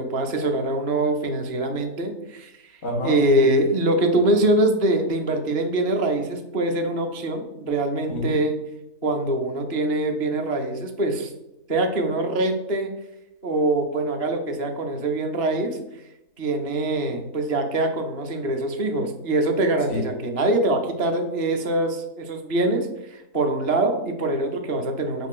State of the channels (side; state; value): right; late; 3.0 ms